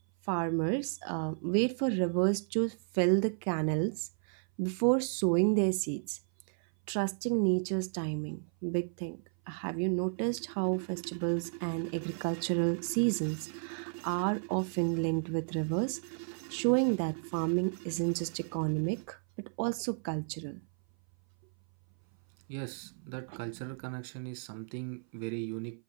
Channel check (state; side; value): silent; left; 56 dB below the other